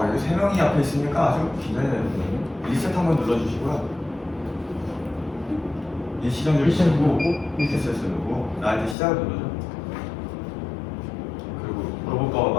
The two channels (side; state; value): right; drops out; at 9.0 s